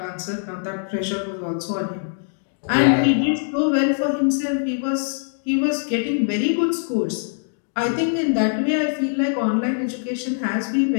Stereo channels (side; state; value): right; silent; digital silence